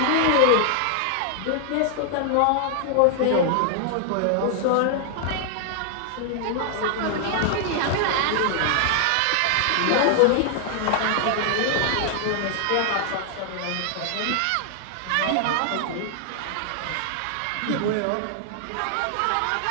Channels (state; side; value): different; both; correlation 0.00